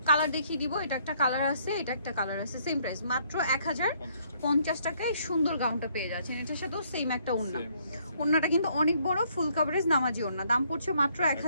কালার দেখিয়ে দিব, এটা একটা কালার আছে, এটা একটা কালার আছে, সেম প্রাইস মাত্র 1050 টাকায় সুন্দর গাউনটা পেয়ে যাচ্ছেন। এটার সাথেও সেম একটা ওড়না, ওড়নাটা কিন্তু অনেক বড়, ফুল কভারেজ নামাজি ওড়না। দাম পড়ছে মাত্র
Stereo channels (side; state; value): both; inverted; correlation -0.67